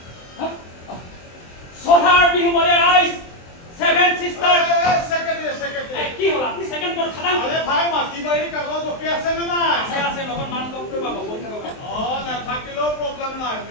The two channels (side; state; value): right; late; 23 ms